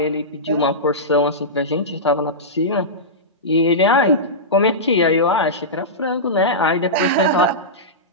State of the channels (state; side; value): normal; both; correlation -0.15